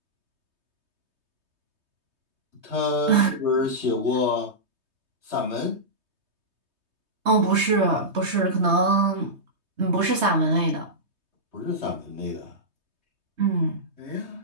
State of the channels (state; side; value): late; left; 3.2 ms